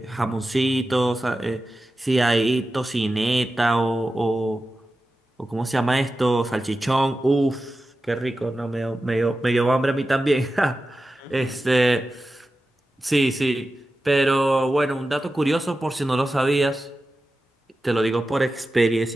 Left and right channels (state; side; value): normal; both; correlation 0.93